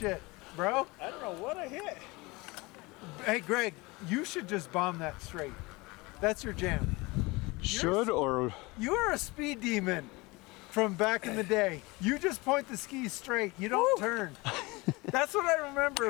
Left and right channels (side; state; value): right; quieter; 23.8 dB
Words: bro. I don't know what I hit. Hey, Greg, you should just bomb that straight. That's your jam. Should or You are a speed demon from back in the day. You just point the skis straight. You don't turn. That's what I remember